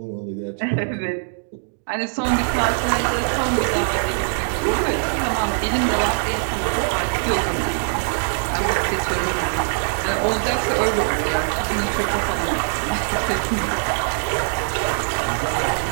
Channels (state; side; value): silent; left; digital silence